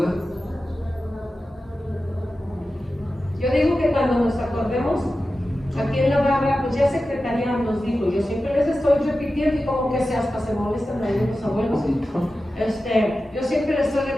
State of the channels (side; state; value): both; normal; correlation 0.93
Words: Yo digo que cuando nos acordemos, aquí en la barra, pues ya Secretaría nos dijo, yo siempre les estoy repitiendo y como que hasta se molestan ahí los abuelos. Yo siempre les estoy